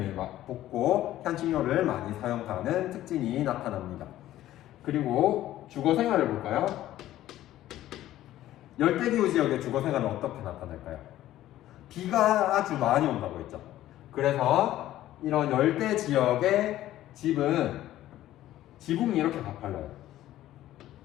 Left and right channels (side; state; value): right; quieter; 13.9 dB